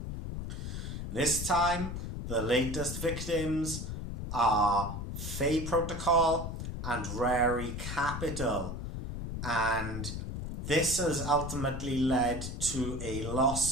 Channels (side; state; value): left; noise; rumble, 6 dB below the sound